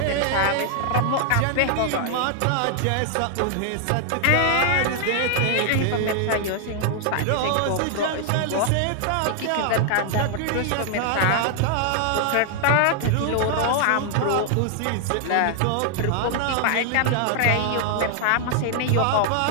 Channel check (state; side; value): different; both; correlation 0.00